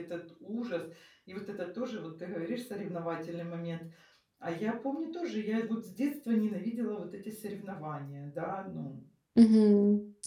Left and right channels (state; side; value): identical; both; correlation 1.00